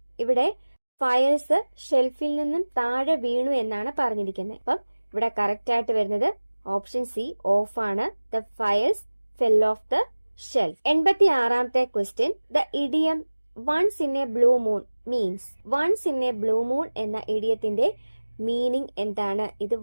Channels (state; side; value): inverted; both; correlation -1.00